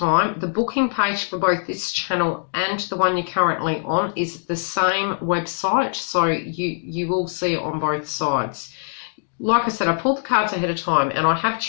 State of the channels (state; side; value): silent; right; digital silence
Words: The booking page for both this channel and the one you're currently on is the same website, so you will see it on both sides. Like I said, I pulled the cards ahead of time and I have